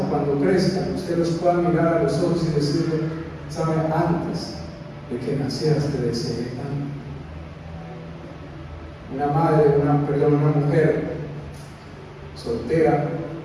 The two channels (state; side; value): identical; both; correlation 1.00